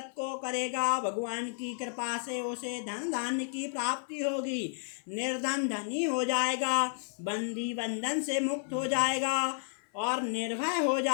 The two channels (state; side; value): silent; right; 57 dB below the other